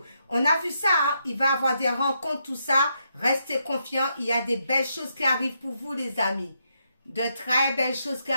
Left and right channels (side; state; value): both; inverted; correlation -0.79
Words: On a vu ça, hein? Il va y avoir des rencontres, tout ça. Restez confiants, il y a des belles choses qui arrivent pour vous, les amis. De très belles choses qui